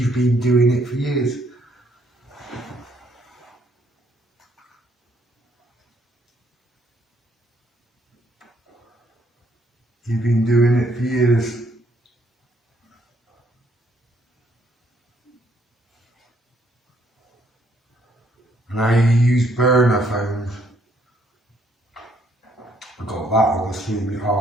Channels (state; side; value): normal; both; correlation 0.68